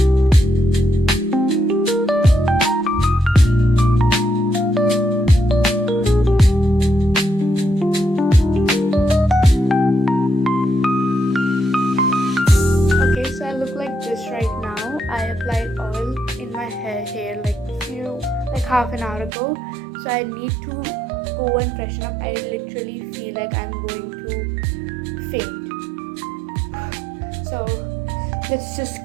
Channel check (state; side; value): drops out; left; at 19.3 s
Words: Right now I applied oil in my hair like half an hour ago, so I need to go and freshen up. I literally feel like I'm going to faint. So let's just